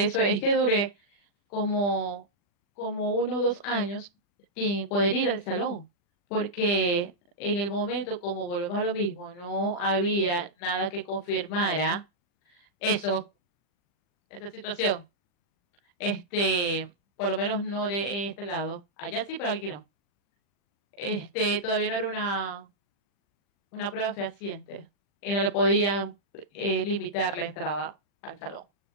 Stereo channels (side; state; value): right; late; 40 ms